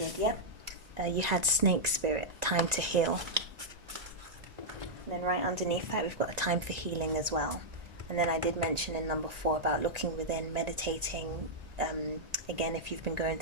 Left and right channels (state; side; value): late; left; 1.9 ms